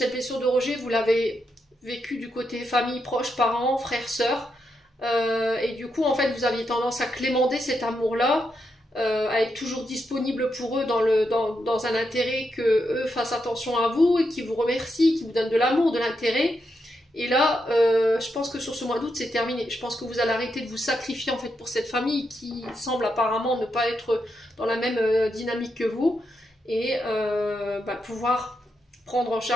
blessure de rejet, vous l'avez vécue du côté famille, proches, parents, frères, sœurs. Et du coup, en fait, vous aviez tendance à clémenter cet amour-là, à être toujours disponible pour eux dans un intérêt que eux fassent attention à vous et qui vous remercient, qui vous donnent de l'amour, de l'intérêt. Et là, je pense que sur ce mois d'août, c'est terminé. Je pense que vous allez arrêter de vous sacrifier en fait pour cette famille qui semble apparemment ne pas être dans la même dynamique que vous et pouvoir prendre en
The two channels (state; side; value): normal; both; correlation 0.83